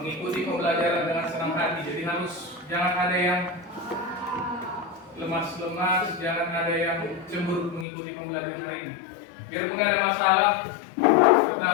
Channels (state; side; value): drops out; right; at 7.9 s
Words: pembelajaran dengan senang hati. Jadi jangan ada yang lemas-lemas, jangan ada yang cemburu mengikuti pembelajaran hari ini. Biarpun ada masalah,